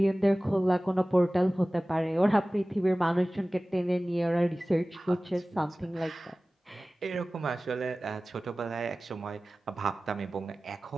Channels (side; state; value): both; normal; correlation 0.97